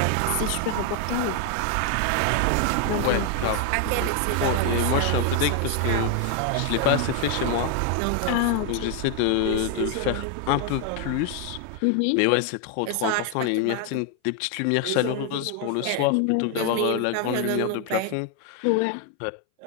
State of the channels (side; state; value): both; different; correlation 0.01